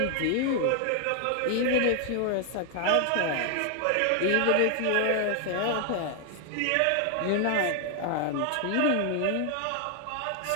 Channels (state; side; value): different; both; correlation 0.00